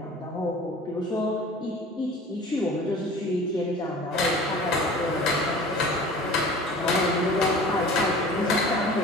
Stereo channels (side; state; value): both; normal; correlation 0.42